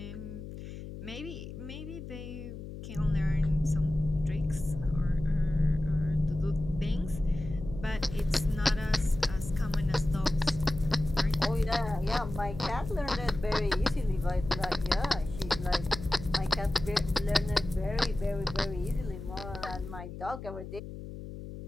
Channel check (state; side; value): noise; left; hum, 10 dB below the sound